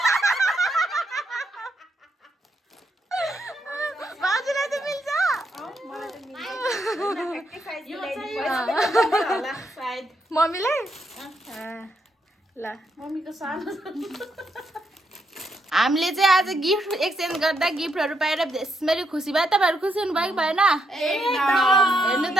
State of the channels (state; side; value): normal; both; correlation 0.79